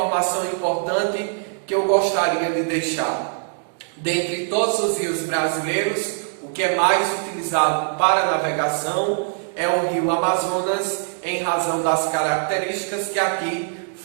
importante que eu gostaria de deixar? Dentre todos os rios brasileiros, o que é mais utilizado para navegação é o rio Amazonas, em razão das características que aqui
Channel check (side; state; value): left; silent; 64 dB below the other